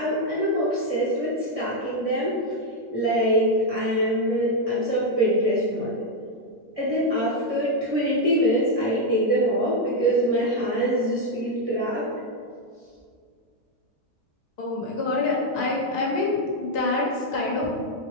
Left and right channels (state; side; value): normal; both; correlation 0.01